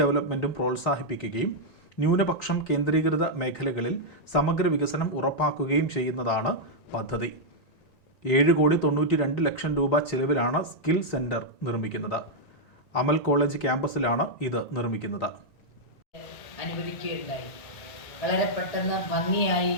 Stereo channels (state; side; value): late; right; 1.9 ms